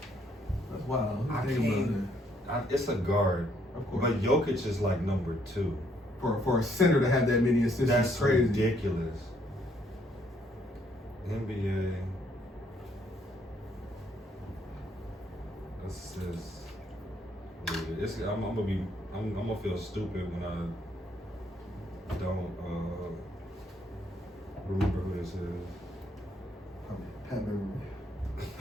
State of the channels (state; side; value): normal; both; correlation 0.69